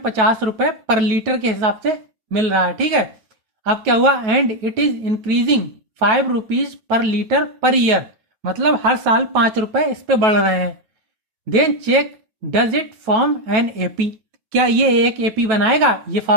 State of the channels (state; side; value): late; left; 9.2 ms